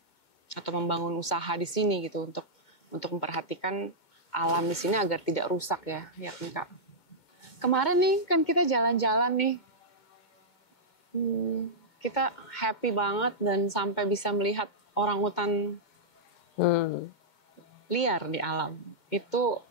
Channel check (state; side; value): late; right; 2.2 ms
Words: atau membangun usaha di sini gitu untuk memperhatikan alam di sini agar tidak rusak ya kan Kak. Kemarin nih kan kita jalan-jalan nih, kita happy banget dan sampai bisa melihat orangutan liar di alam. Itu